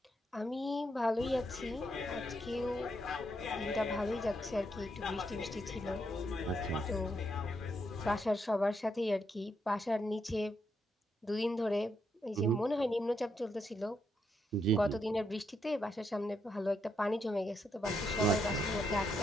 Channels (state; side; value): normal; both; correlation 0.79